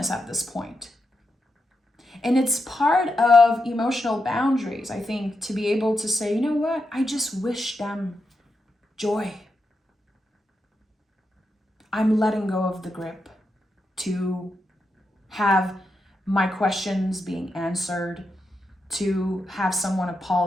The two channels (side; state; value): both; normal; correlation 0.86